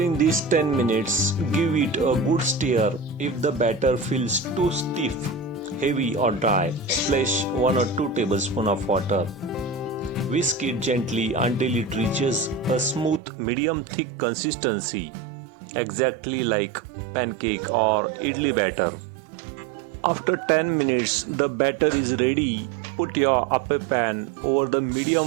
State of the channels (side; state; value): left; drops out; at 13.2 s